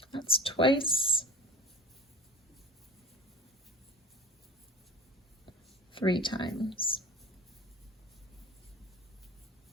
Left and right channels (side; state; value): both; normal; correlation 0.35